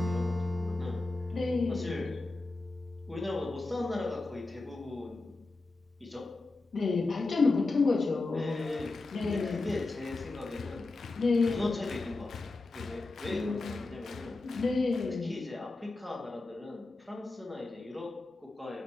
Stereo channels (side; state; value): right; quieter; 3.2 dB